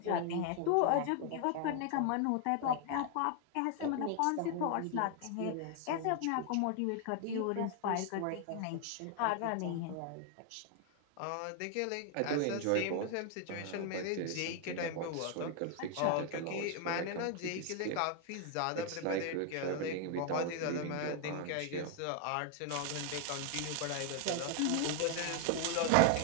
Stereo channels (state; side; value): different; both; correlation 0.00